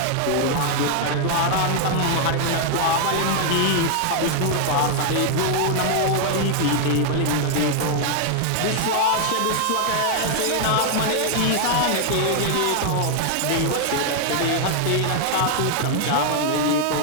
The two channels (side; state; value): both; different; correlation 0.00